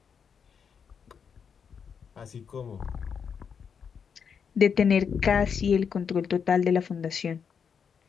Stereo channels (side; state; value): right; quieter; 6.7 dB